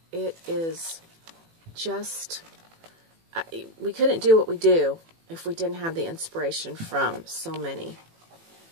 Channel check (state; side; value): late; left; 18 ms